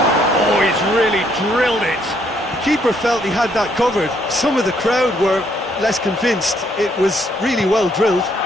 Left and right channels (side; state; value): both; normal; correlation 0.70